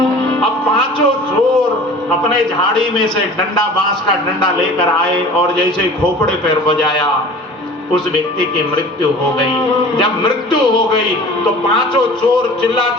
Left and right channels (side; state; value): both; normal; correlation 0.42